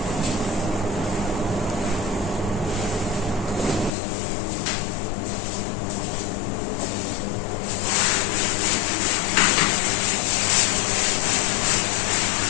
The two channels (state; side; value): drops out; right; at 4.0 s